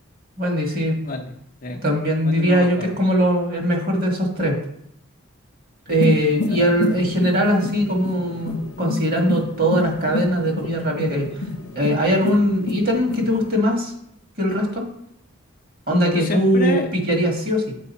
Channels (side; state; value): both; normal; correlation 0.45